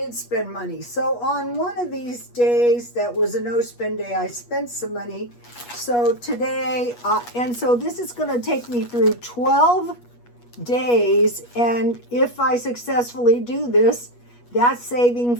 spend money. So on one of these days that was a no spend day, I spent some money. So today, and so this is going to take me through 12 days, and if I successfully do this, that's saving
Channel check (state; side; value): late; right; 8.3 ms